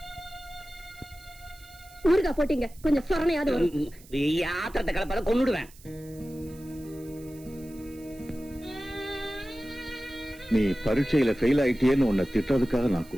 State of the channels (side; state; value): right; noise; hiss, 23 dB below the sound